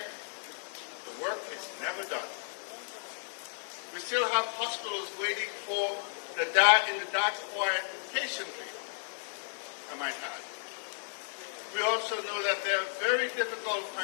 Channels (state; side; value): silent; right; digital silence